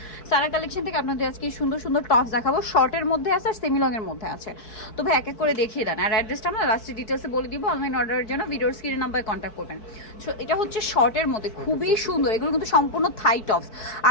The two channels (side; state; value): right; late; 4.6 ms